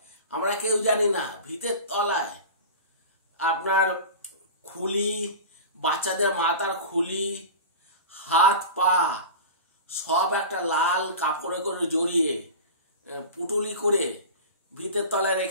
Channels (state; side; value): inverted; both; correlation -0.32